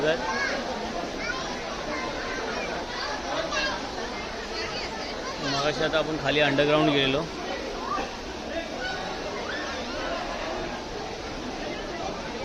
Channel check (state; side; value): identical; both; correlation 1.00